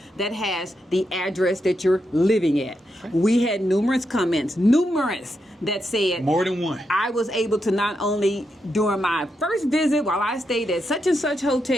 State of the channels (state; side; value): normal; both; correlation 0.84